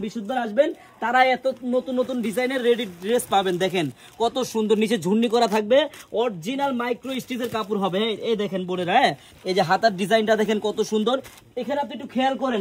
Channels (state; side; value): identical; both; correlation 1.00